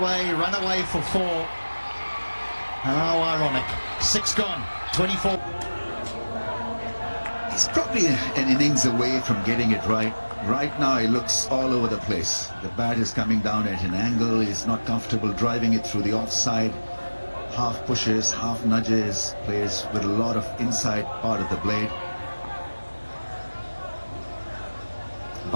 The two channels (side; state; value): both; inverted; correlation -1.00